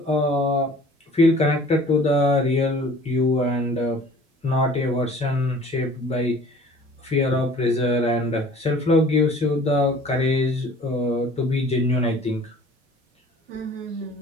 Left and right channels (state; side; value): normal; both; correlation 0.49